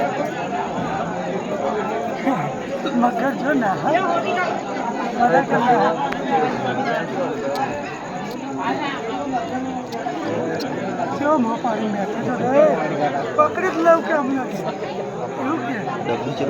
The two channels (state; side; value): identical; both; correlation 1.00